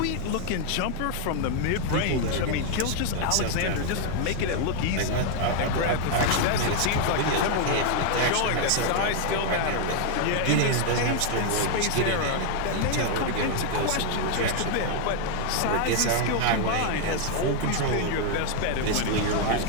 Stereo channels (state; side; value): different; both; correlation 0.00